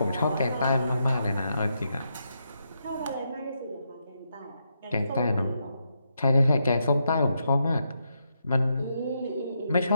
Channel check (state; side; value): inverted; both; correlation -0.81